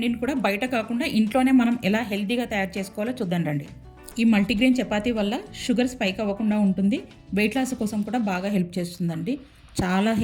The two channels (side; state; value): both; identical; correlation 1.00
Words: కూడా బయట కాకుండా ఇంట్లోనే మనం ఎలా హెల్తీగా తయారు చేసుకోవాలో చూద్దాం రండి. ఈ మల్టీగ్రెయిన్ చపాతీ వల్ల షుగర్ స్పైక్ అవ్వకుండా ఉంటుంది. వెయిట్ లాస్ కోసం కూడా బాగా హెల్ప్ చేస్తుందండి. చాలా